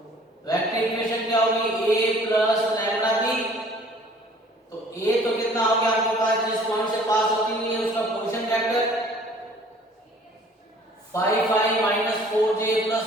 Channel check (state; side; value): normal; both; correlation 0.53